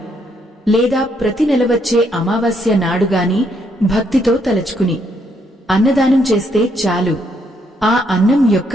లేదా ప్రతి నెల వచ్చే అమావాస్య నాడుగాని భక్తితో తలచుకుని అన్నదానం చేస్తే చాలు. ఆ అన్నం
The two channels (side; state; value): both; normal; correlation 0.73